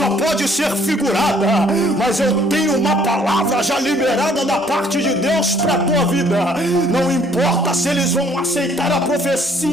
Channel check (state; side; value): normal; both; correlation 0.62